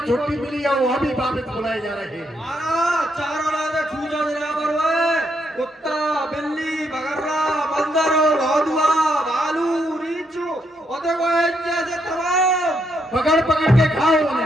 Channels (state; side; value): normal; both; correlation 0.77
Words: छुट्टी मिली है, वो अभी वापस बुलाए जा रहे हैं। महाराज चारों राजा छूजा देना परवाए, कुत्ता, बिल्ली, बगररा, बंदर, भौदुआ, भालू, रीछू, और देखो जैसे तमाम पकड़ पकड़ के खाओ